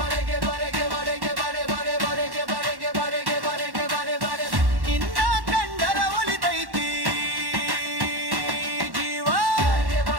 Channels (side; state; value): left; late; 1.1 ms